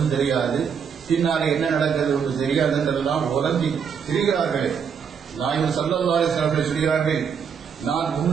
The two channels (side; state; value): left; quieter; 6.9 dB